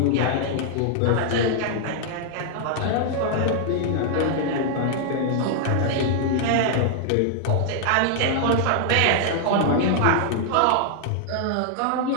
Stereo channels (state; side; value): different; both; correlation 0.00